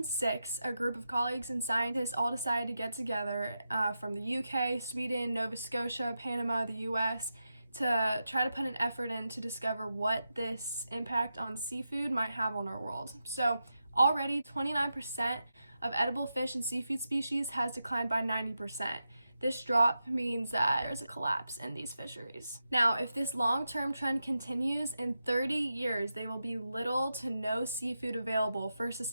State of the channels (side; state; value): both; inverted; correlation -0.89